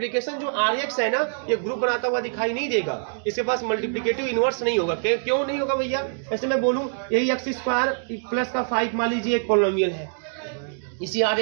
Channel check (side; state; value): left; silent; digital silence